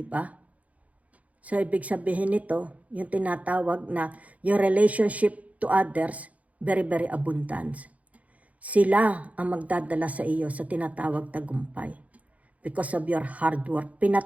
ba? So, ibig sabihin nito, yung tinatawag na yung relationship to others, very, very abundance. Sila ang magdadala sa iyo sa tinatawag tagumpay. Because of your hard work,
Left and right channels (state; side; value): late; left; 0.069 ms